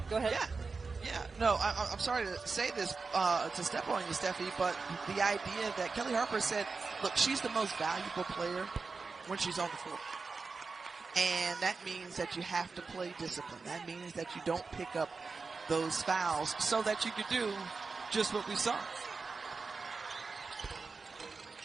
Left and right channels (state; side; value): quieter; left; 4.4 dB